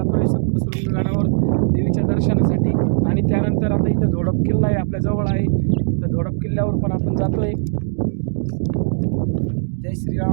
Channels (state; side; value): silent; left; digital silence